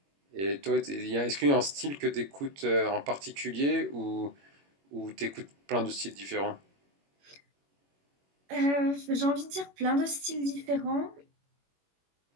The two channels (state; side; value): late; left; 21 ms